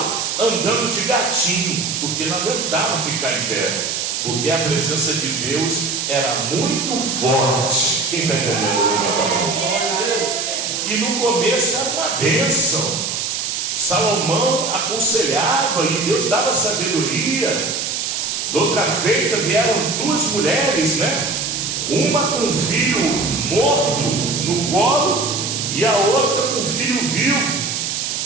andando de gatinho, porque não aguentavam ficar em pé, porque a presença de Deus era muito forte. Quem está entendendo? E no começo era uma bênção. Salomão aconselhava e Deus dava sabedoria. De outra feita vieram duas mulheres, né? Uma com um filho morto no colo e a outra com um filho vivo.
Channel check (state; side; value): noise; right; hiss, 2 dB below the sound